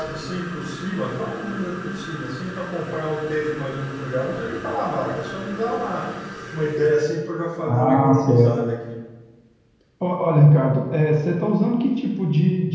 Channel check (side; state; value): both; identical; correlation 1.00